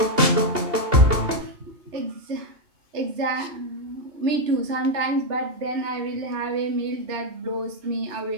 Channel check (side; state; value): left; late; 2.8 ms